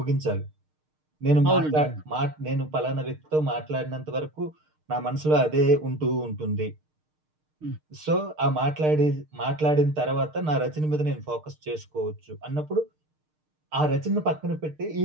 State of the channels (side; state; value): left; late; 6.5 ms